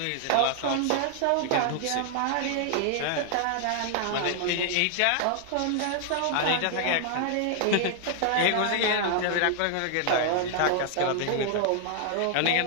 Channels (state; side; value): different; both; correlation 0.00